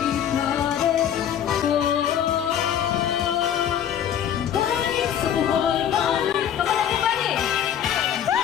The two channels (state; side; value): quieter; right; 9.6 dB